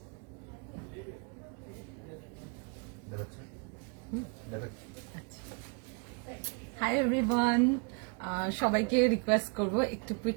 হাই এভরিওয়ান, সবাইকে রিকোয়েস্ট করব একটু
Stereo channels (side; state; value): left; quieter; 36.0 dB